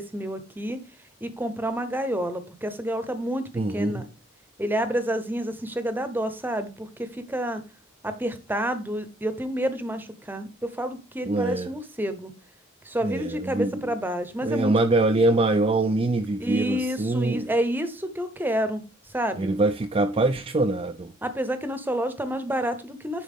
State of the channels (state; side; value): normal; both; correlation 0.66